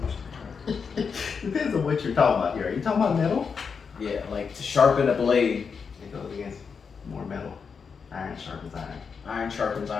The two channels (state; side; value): quieter; right; 5.8 dB